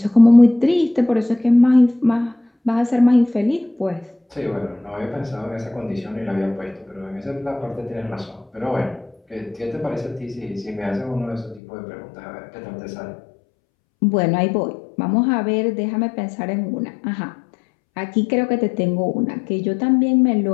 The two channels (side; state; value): right; drops out; at 11.6 s